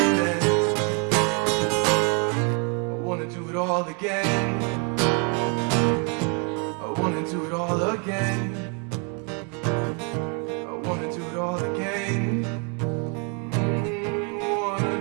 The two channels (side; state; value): left; quieter; 37.0 dB